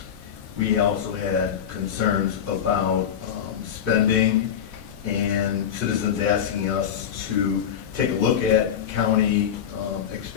We also had concerns about spending and citizens asking us to take a look at county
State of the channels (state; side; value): quieter; right; 8.7 dB